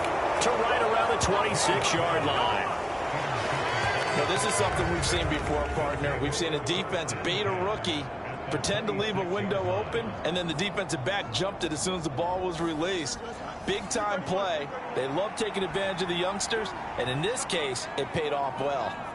to right around the 26-yard line. Now, this is something we've seen before, partner. We've seen a defense bait a rookie, pretend to leave a window open, and then the defensive back jumped it as soon as the ball was released. Big-time play. They love taking advantage of the youngsters, and in this case, it paid off well.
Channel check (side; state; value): both; identical; correlation 1.00